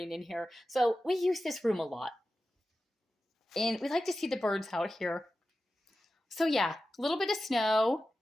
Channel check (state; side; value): normal; both; correlation 0.93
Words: in here. So we use this room a lot. And we like to see the birds out here. So yeah, a little bit of snow.